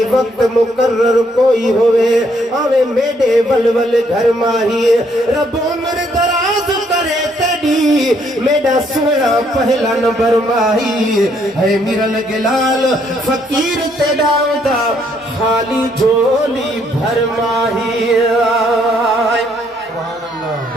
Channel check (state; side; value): normal; both; correlation 0.70